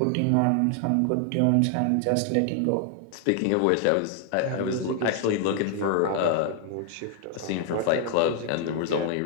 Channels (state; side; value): different; both; correlation 0.00